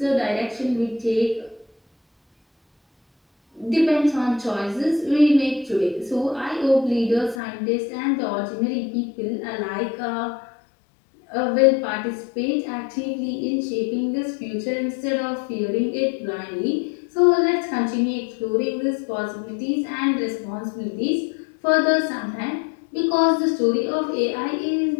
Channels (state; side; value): drops out; right; at 7.4 s